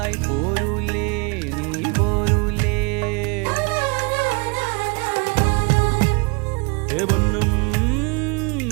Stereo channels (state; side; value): quieter; left; 31.3 dB